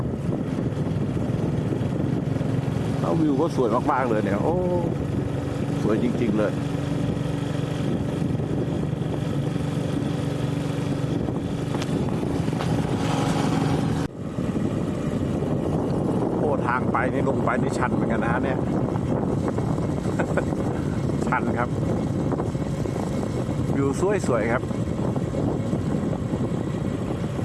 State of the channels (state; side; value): identical; both; correlation 1.00